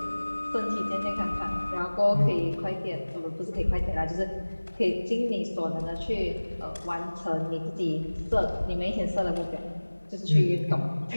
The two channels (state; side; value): inverted; both; correlation -1.00